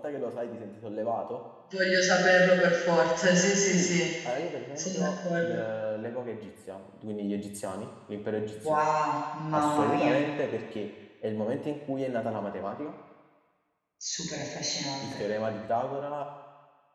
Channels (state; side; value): identical; both; correlation 1.00